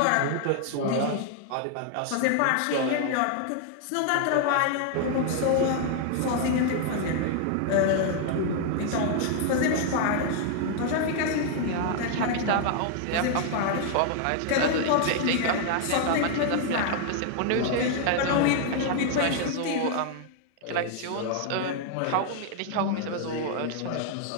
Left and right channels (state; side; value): different; both; correlation 0.00